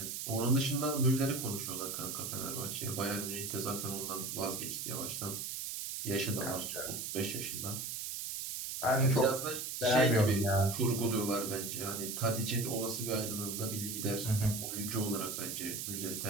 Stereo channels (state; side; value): noise; right; hiss, 4 dB below the sound